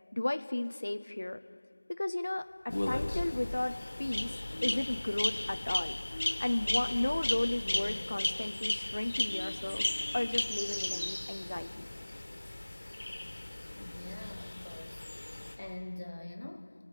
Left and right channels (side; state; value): both; inverted; correlation -1.00